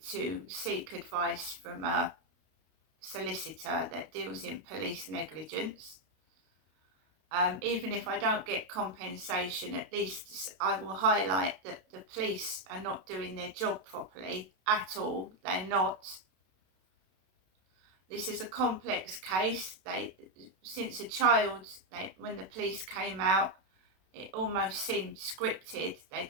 to seek advice from a solicitor that deals in police negligence. Even if I don't get compensation, at least I will highlight that the police are not doing their job properly at all. They're not. This is a complex case. Since a child, when the police came out, it almost seemed scripted.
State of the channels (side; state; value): left; late; 32 ms